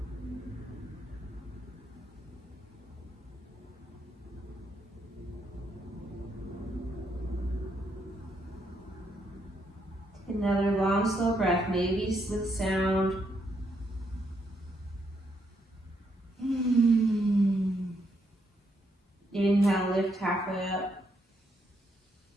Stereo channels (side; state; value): both; normal; correlation 0.77